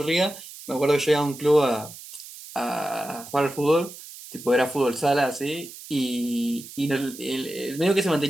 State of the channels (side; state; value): right; noise; hiss, 15 dB below the sound